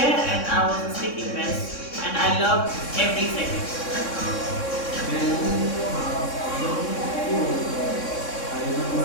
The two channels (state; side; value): late; right; 3.6 ms